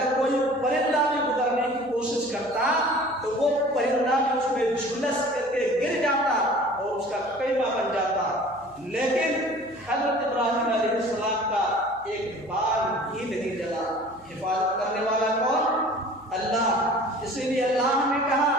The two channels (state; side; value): noise; right; hum, 27 dB below the sound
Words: کوئی پرندہ بھی گزرنے کی کوشش کرتا تو وہ پرندہ بھی اس میں جھلس کر کے گر جاتا اور اس کا قیمہ بن جاتا۔ لیکن حضرت ابراہیم علیہ السلام کا ایک بال ہی نہیں جلا۔ حفاظت کرنے والا کون؟ اللہ۔ اسی لیے اللہ نے کہا